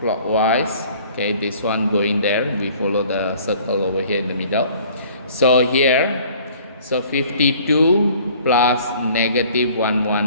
Okay, this one going there, we follow the circle over here in the middle. So here, so 52 plus negative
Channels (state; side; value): inverted; both; correlation -0.53